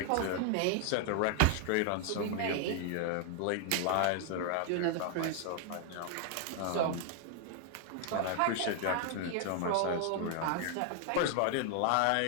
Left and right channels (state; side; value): different; both; correlation 0.00